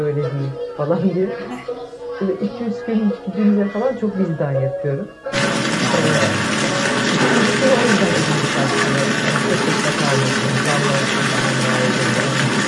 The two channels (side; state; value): both; identical; correlation 1.00